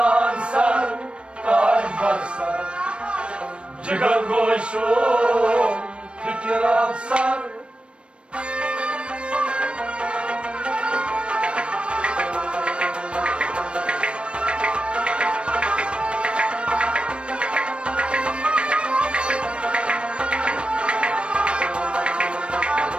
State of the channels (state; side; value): late; left; 0.058 ms